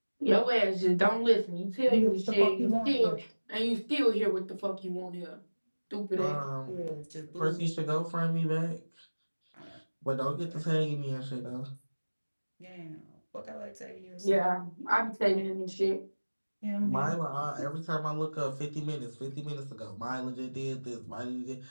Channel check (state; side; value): inverted; both; correlation -1.00